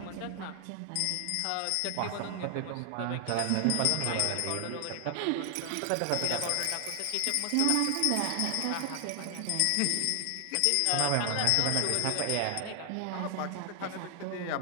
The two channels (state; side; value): different; both; correlation 0.00